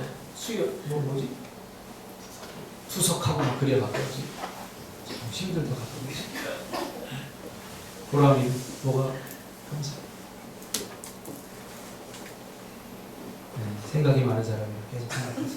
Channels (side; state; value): both; identical; correlation 1.00